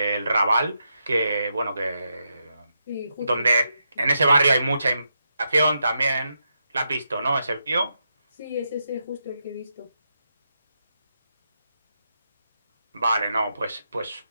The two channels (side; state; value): both; inverted; correlation -0.83